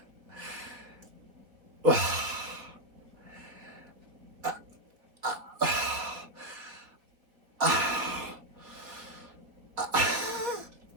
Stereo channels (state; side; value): late; left; 3.9 ms